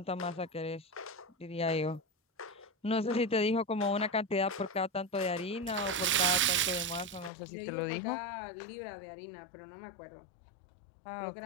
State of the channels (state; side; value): drops out; right; at 7.3 s